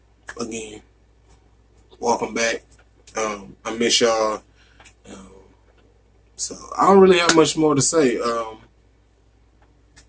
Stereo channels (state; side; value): identical; both; correlation 1.00